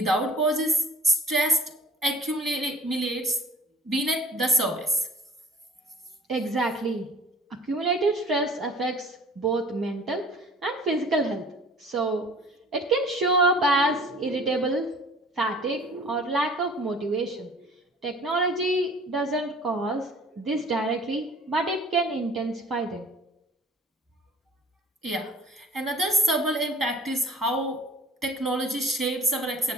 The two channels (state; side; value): normal; both; correlation 0.48